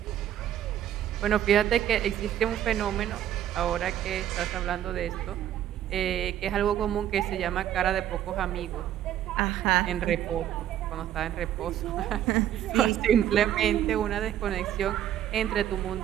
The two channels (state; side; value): quieter; left; 11.3 dB